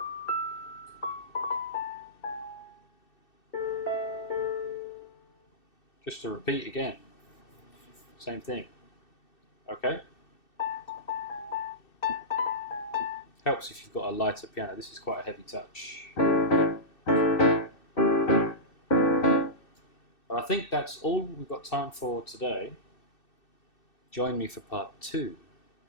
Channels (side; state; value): right; late; 2.6 ms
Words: Just to repeat again. Same thing. Okay? Helps if you've got a lighter piano. This is quite a heavy touch. But I think that's all we've got time for today. Join me for part 2